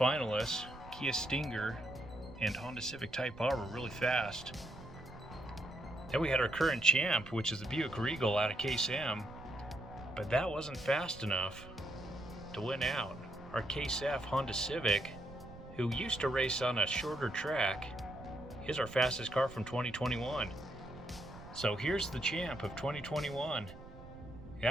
Kia Stinger and Honda Civic Type R were really fast. Then we had our current champ, which is the Buick Regal out of Case M. But that wasn't fast enough to win out. Our Case F Honda Civic, who used to race on a shorter track, is our fastest car from 2021. So here's the champ of 2021.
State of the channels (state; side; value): noise; right; rumble, 16 dB below the sound